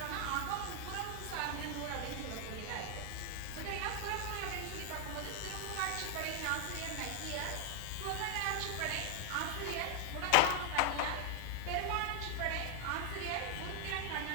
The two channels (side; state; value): both; different; correlation 0.00